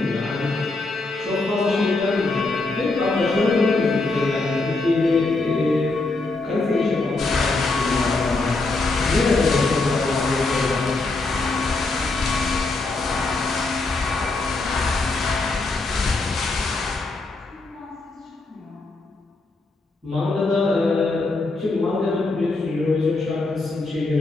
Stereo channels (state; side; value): quieter; right; 3.3 dB